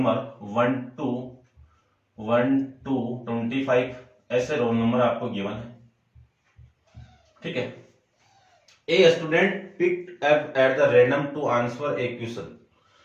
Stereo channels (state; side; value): identical; both; correlation 1.00